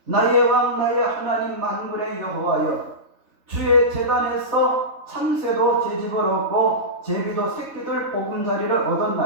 나의 왕 나의 하나님 만물의 여호와여 주의 제단에서 참새도 제집을 얻고 제비도 새끼들 보금자리를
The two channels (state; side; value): late; left; 3.6 ms